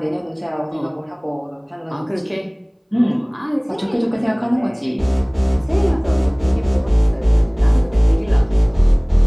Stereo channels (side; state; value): both; identical; correlation 1.00